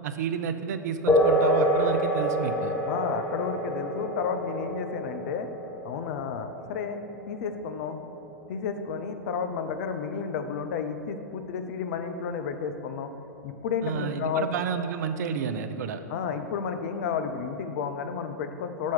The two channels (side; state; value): both; normal; correlation 0.04